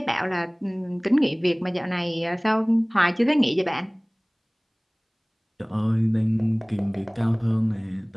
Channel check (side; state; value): both; identical; correlation 1.00